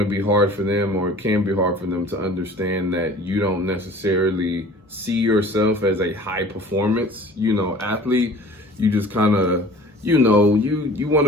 be hard for them, or it can be hard for them, to understand that you don't necessarily see yourself as a high performance, you know, athlete. You just kind of, you know, you want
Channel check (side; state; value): both; normal; correlation 0.46